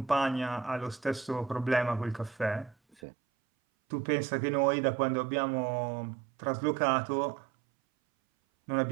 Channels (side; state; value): left; drops out; at 3.0 s